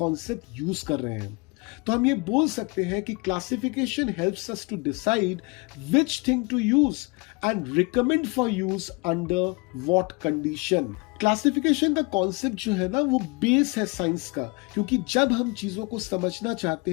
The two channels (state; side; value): quieter; right; 28.6 dB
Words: यूज कर रहे हैं। तो हम ये बोल सकते हैं कि classification helps us to decide which thing to use and recommend for use under what condition. Classification का कॉन्सेप्ट जो है ना वो बेस है साइंस का, क्योंकि जब हम चीजों को समझना चाहते